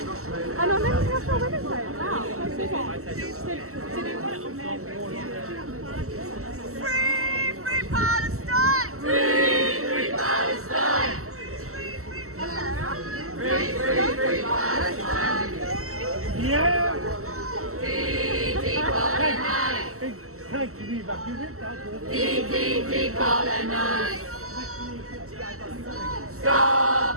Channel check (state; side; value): late; left; 0.63 ms